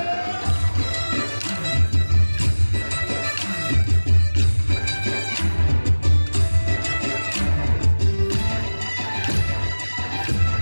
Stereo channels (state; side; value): inverted; both; correlation -1.00